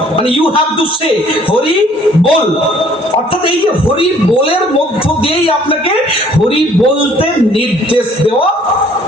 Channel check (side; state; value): both; normal; correlation 0.58